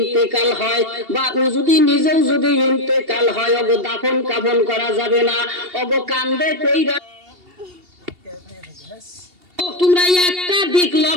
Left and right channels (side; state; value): left; late; 2.8 ms